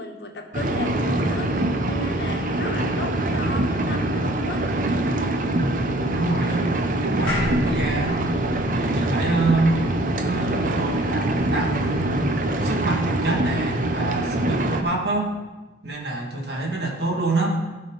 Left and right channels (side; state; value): both; normal; correlation 0.54